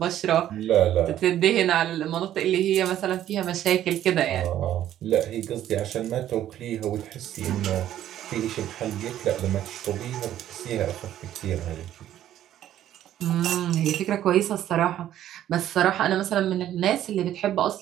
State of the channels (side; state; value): left; quieter; 11.9 dB